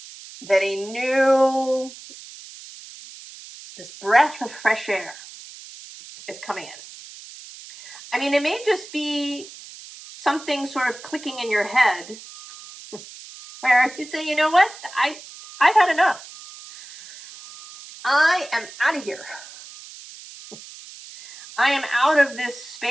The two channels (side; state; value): right; noise; hiss, 17 dB below the sound